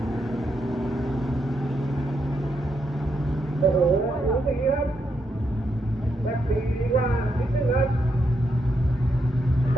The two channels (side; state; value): both; normal; correlation 0.80